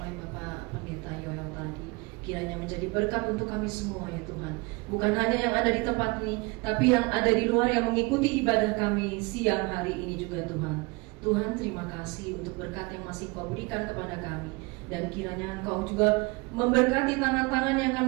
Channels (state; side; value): quieter; left; 26.4 dB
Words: Bapak Pendeta Yoel tadi. Kiranya menjadi berkat untuk kami semua ya Tuhan. Bukan hanya yang ada di tempat ini, tapi yang ada di luar yang mengikuti ibadah kami siang hari ini juga Tuhan. Tuhan, terima kasih untuk berkat yang masih Kau berikan kepada kami, dan kiranya Engkau juga memberkati tangan-tangan yang akan